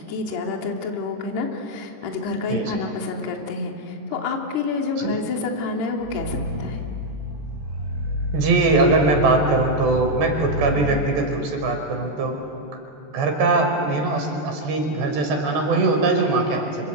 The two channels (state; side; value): late; left; 14 ms